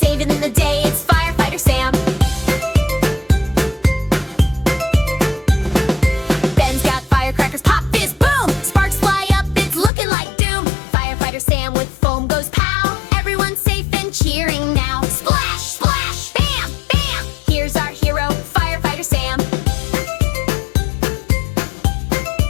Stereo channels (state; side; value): drops out; right; at 9.9 s